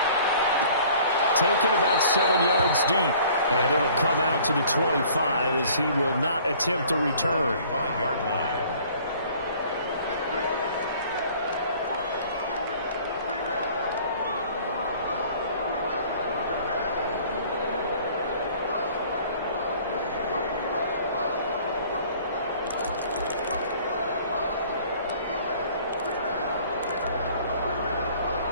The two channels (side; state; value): both; inverted; correlation -0.53